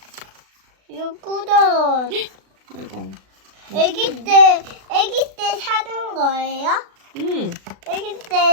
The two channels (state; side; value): late; left; 36 ms